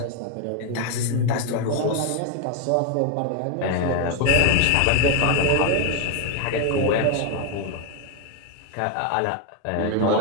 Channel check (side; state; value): both; different; correlation 0.01